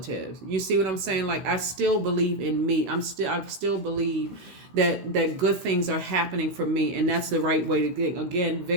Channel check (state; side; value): late; left; 16 ms